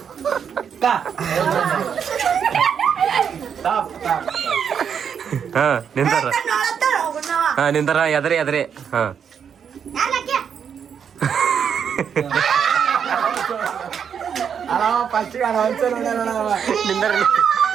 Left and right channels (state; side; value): quieter; left; 7.5 dB